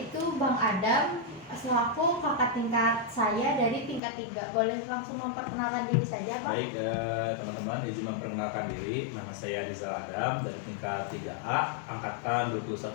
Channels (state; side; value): drops out; right; at 4.0 s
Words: Bang Adam selaku kakak tingkat saya dari tingkat 3. Boleh langsung memperkenalkan diri saja, Bang? Baik, teman-teman, izin memperkenalkan diri. Nama saya Rizal Adam dari tingkat 3A, angkatan